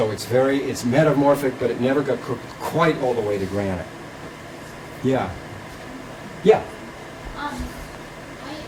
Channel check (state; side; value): identical; both; correlation 1.00